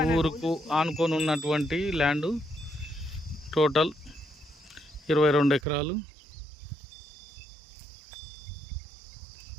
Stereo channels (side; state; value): left; drops out; at 5.6 s